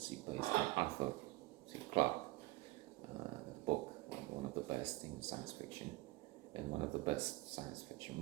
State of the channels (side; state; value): left; quieter; 20.1 dB